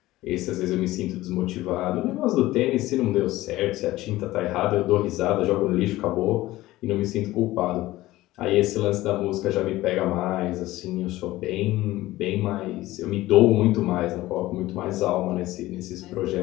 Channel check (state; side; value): quieter; right; 17.1 dB